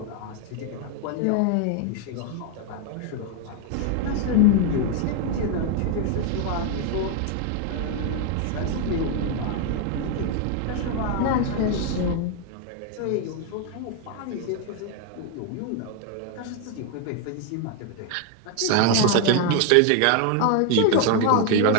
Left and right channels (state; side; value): different; both; correlation 0.01